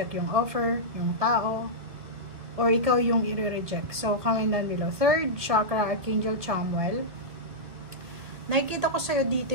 yung offer, yung tao, or ikaw yung i-reject. So, comment down below. Third chakra, Archangel Chamuel. Nakikita ko sa'yo dito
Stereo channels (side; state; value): left; late; 1.9 ms